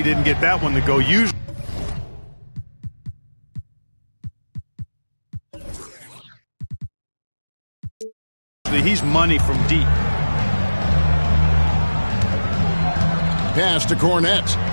didn't get that one to go. Usually he's money from deep. Pass to Cornette.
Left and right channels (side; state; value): both; inverted; correlation -1.00